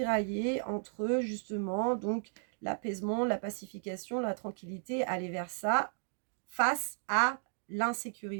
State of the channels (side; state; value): left; silent; digital silence